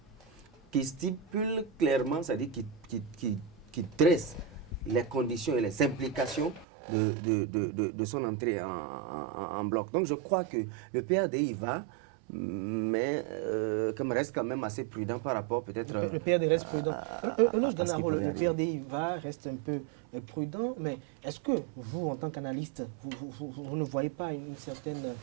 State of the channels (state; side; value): drops out; left; at 6.7 s